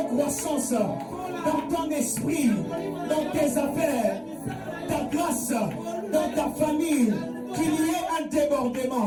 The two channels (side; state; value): both; identical; correlation 1.00